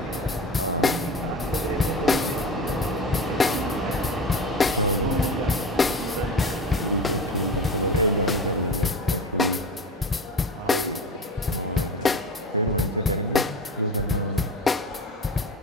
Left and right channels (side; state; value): both; normal; correlation 0.30